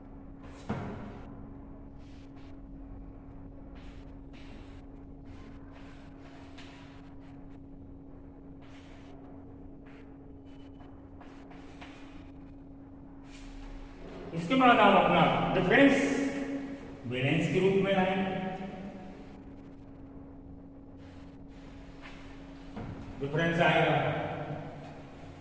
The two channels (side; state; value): both; identical; correlation 1.00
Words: इसके बाद आप अपना डिफरेंस बैलेंस के रूप में लाएंगे। डिफरेंस आएगा